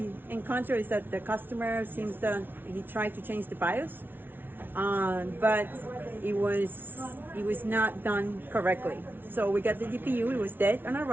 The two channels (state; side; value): late; left; 0.099 ms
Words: encounter is that the customer seems that he tried to change the BIOS, but it was not done correctly. So we got the GPU. It was dead on